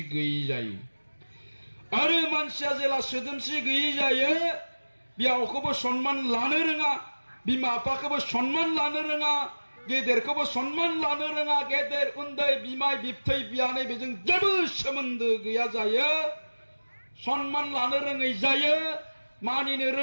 गैयि जायो आरो मानसिया जेला सोदोमस्रि गैयि जायो बिहावखौबो सनमान लानो रोङा बिमा बिफाखौबो सनमान लानो रोङा गेदेरखौबो सनमान लानो रोङा गेदेर उन्दै बिमाय बिबथै बियानै बेजों जेबो सोमोन्दो गैया जायो सनमान लानो रोङै जायो मानिनो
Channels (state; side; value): inverted; both; correlation -1.00